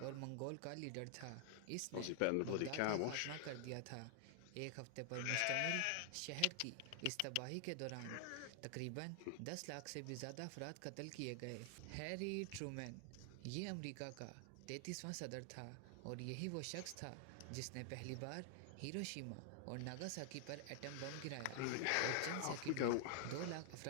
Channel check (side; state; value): both; different; correlation 0.00